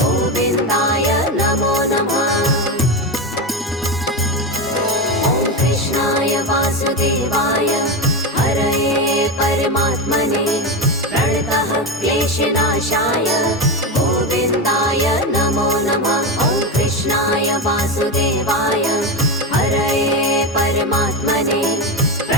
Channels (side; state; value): both; normal; correlation 0.16